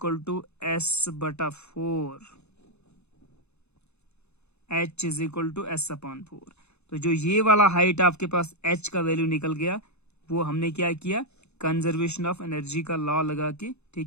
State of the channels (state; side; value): late; right; 0.81 ms